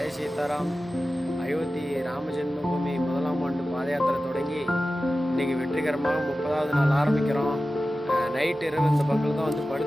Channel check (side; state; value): both; normal; correlation 0.94